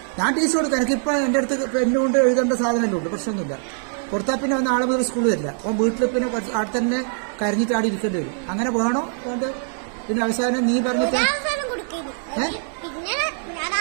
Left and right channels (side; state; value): left; silent; digital silence